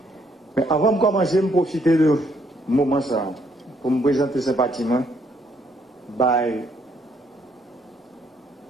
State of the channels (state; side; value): normal; both; correlation 0.70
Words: Mais avant de commencer, je profiter de ce moment ça pour me présenter sympathiquement par